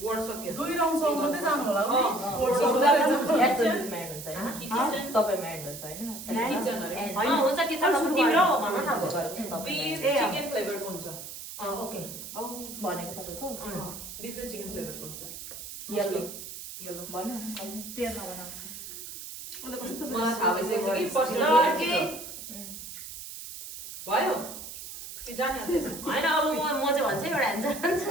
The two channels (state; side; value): noise; right; hiss, 11 dB below the sound